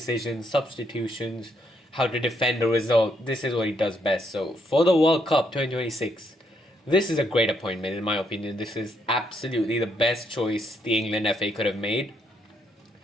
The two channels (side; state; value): both; normal; correlation 0.75